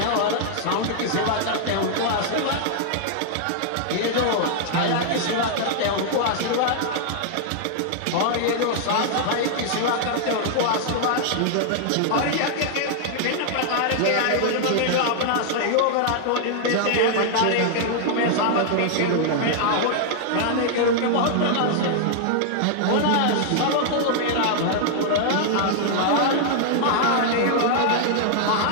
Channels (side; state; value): both; different; correlation -0.01